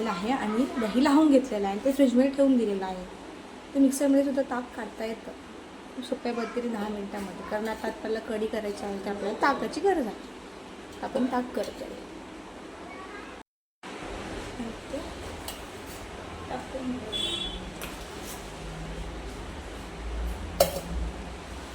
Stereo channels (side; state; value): both; identical; correlation 1.00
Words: आहे आणि दही लावून घेतलेलं आहे, ते फ्रीजमध्ये ठेवून दिलेलं आहे. ते मिक्सरमध्ये सुद्धा ताक काढता येतं खूप सोप्या पद्धतीने 10 मिनिटांमध्ये. कारण आता आपल्याला कढी करायची आहे, तर आपल्याला ताकाची गरज आहे. आपण ताक करतो आहे.